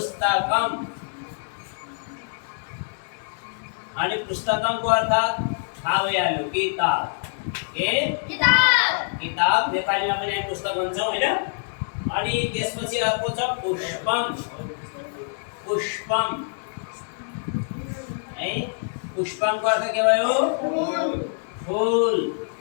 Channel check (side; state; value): right; silent; 62 dB below the other